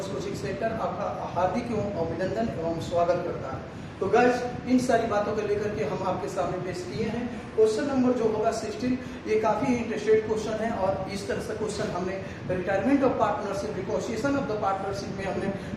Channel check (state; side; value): identical; both; correlation 1.00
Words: coaching centre आपका हार्दिक एवं अभिनंदन एवं स्वागत करता है। तो गाइस, इन सारी बातों को लेकर के हम आपके सामने पेश किए हैं। क्वेश्चन नंबर जो होगा 16, ये काफी इंटरेस्टेड क्वेश्चन है और इस तरह से क्वेश्चन हमने retirement of partnership, reconciliation of the partnership में हमने